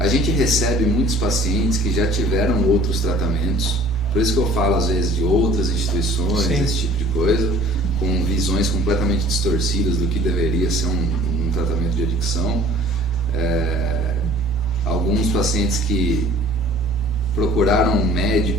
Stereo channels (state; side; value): normal; both; correlation 0.51